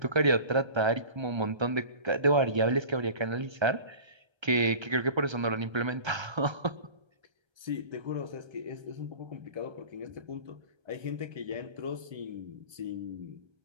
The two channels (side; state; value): left; late; 1.3 ms